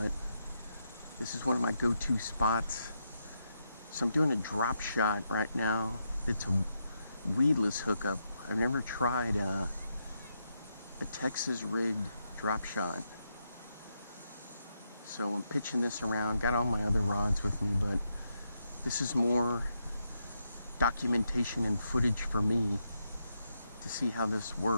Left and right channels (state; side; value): inverted; both; correlation -0.82